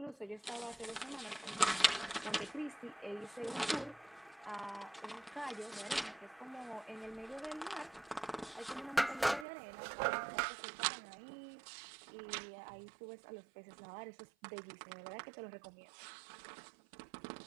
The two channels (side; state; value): left; drops out; at 9.5 s